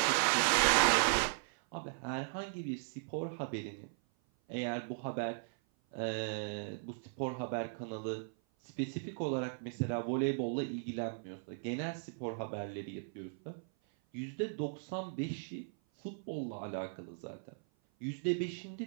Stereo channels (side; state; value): left; silent; 53 dB below the other